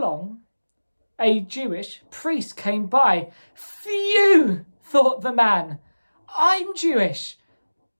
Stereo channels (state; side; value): inverted; both; correlation -1.00